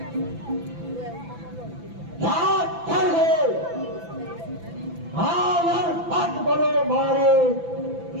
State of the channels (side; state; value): left; late; 5.9 ms